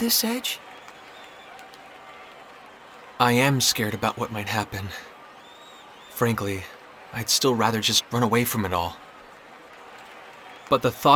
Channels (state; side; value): identical; both; correlation 1.00